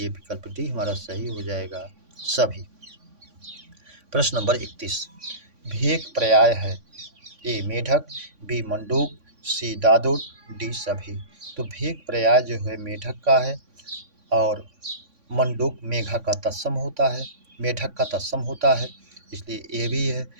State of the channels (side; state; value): left; late; 3.5 ms